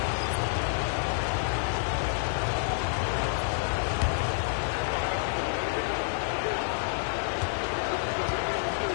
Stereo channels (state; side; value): silent; right; digital silence